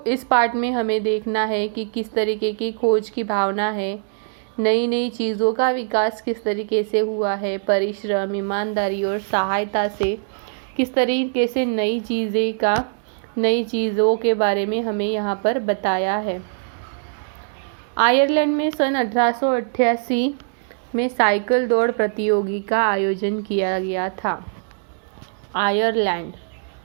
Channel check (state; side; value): silent; left; digital silence